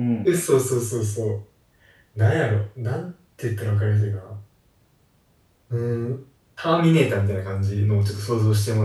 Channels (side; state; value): both; identical; correlation 1.00